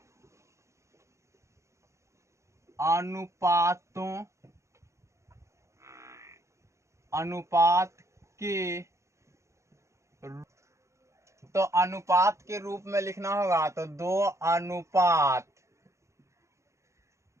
अनुपात के तो अनुपात के रूप में लिखना होगा तो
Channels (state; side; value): late; left; 0.14 ms